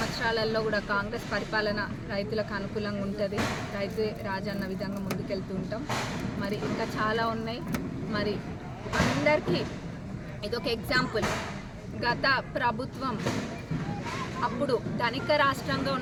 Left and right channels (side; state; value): both; identical; correlation 1.00